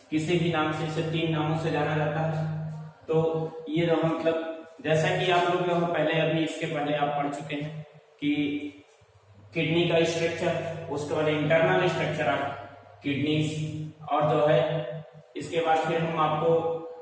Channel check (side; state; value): both; identical; correlation 1.00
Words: किसी भी नाम से, इसे 3 नामों से जाना जाता है। तो ये जो मतलब जैसा कि आप लोग जो पहले अभी इसके पहले आप पढ़ चुके हैं कि किडनी का स्ट्रक्चर, उसके बाद इंटरनल स्ट्रक्चर ऑफ किडनीज, और जो है इसके बाद फिर हम आपको